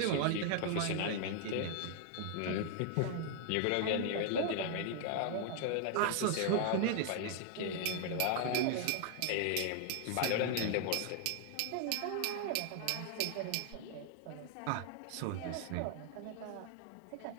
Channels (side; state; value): both; different; correlation 0.00